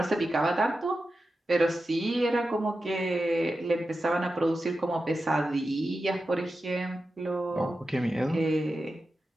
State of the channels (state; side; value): normal; both; correlation 0.91